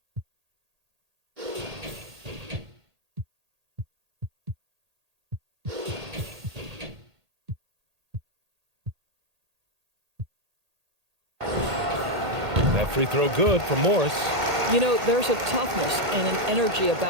That free throw good from Morris. You know, there's a toughness and an energy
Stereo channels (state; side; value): late; left; 1.8 ms